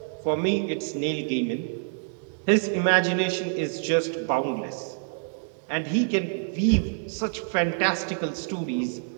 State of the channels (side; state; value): left; silent; 60 dB below the other